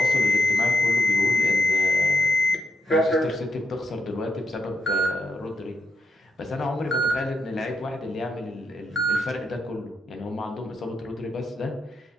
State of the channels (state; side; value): normal; both; correlation 0.83